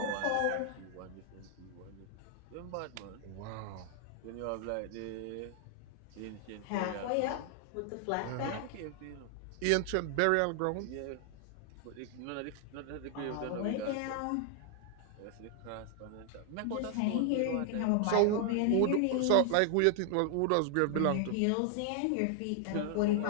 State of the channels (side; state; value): both; different; correlation 0.00